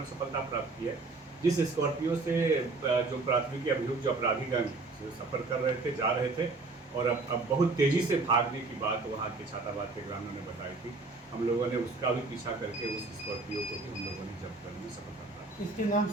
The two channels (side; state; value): left; quieter; 3.6 dB